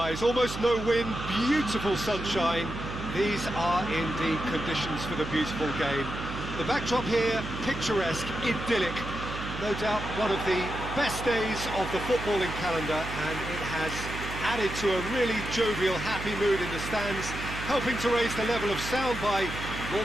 almost no wind, beautiful sunshine. These are indeed conditions for the beautiful game. The backdrop here, picturesque, idyllic. No doubt one of the best days of the footballing calendar, and it has added to a really jovial, happy mood in the stands, helping to raise the level of sound by more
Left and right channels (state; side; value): noise; right; hum, 8 dB below the sound